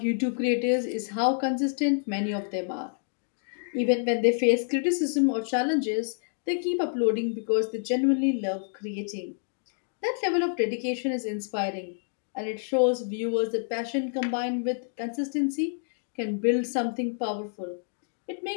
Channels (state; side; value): silent; right; digital silence